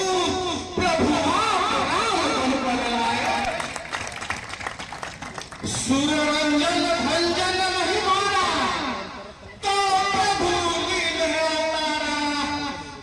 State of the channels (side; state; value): both; identical; correlation 1.00